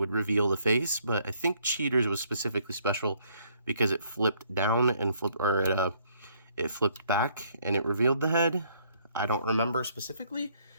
reveal the face. But I think Cheetor's was specifically special because it flipped down and it flipped back and it revealed the head. I don't remember specifically,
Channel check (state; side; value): inverted; both; correlation -0.67